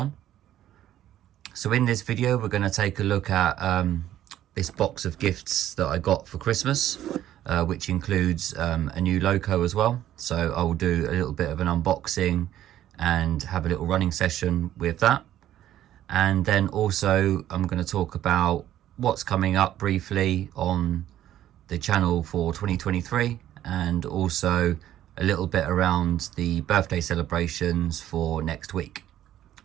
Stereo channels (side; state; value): left; quieter; 12.4 dB